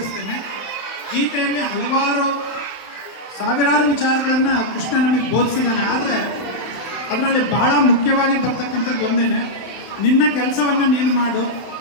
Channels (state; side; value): late; right; 31 ms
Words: ಗೀತೆಯಲ್ಲಿ ಸಾವಿರಾರು ವಿಚಾರಗಳನ್ನು ಕೃಷ್ಣ ನಮಗೆ ಬೋಧಿಸಿದ್ದಾನೆ. ಆದರೆ ಅದರಲ್ಲಿ ಬಹಳ ಮುಖ್ಯವಾಗಿ ಬರ್ತಕ್ಕಂಥದ್ದು ಒಂದೇನೆ, ನಿನ್ನ ಕೆಲಸವನ್ನು ನೀನು ಮಾಡು,